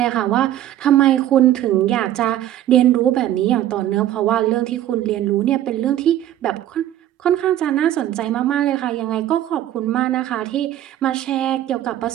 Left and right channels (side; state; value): left; quieter; 12.5 dB